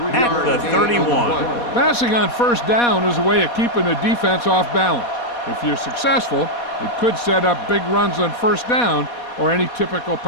at the 31. Passing on 1st down is a way of keeping the defense off balance. If you're successful, it could set up big runs on 1st down or any typical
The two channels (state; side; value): late; right; 4.2 ms